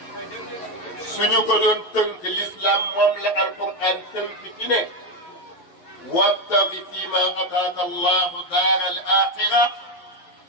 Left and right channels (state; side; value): late; right; 12 ms